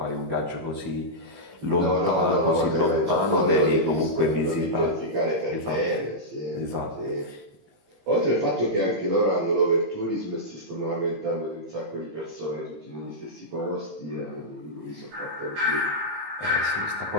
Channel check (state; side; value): late; left; 18 ms